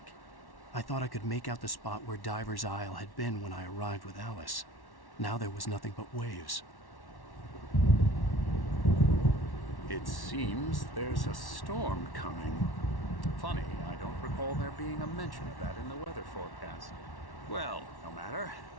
I thought I could make out the spot where Diver's Isle had been when I arrived with Alice. Now there was nothing but waves. It seems there's a storm coming. Funny, I don't recall there being a mention of that in the weather forecast. Well, no matter.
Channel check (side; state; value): right; late; 1.1 ms